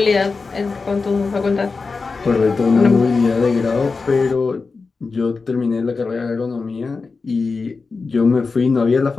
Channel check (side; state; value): right; quieter; 4.3 dB